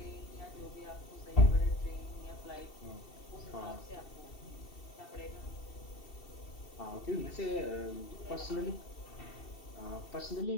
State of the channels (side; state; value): right; late; 2.7 ms